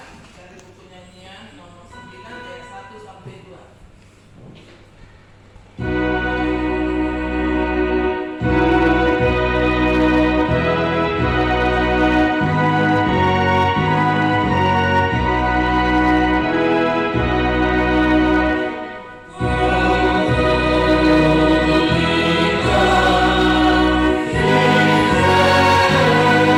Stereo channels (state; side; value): identical; both; correlation 1.00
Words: dari buku nyanyian nomor 9 ayat 1 sampai 2.